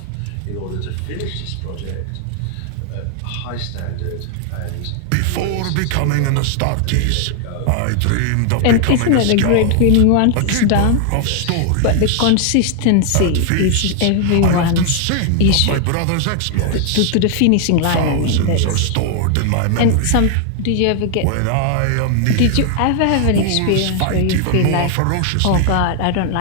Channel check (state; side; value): different; both; correlation 0.00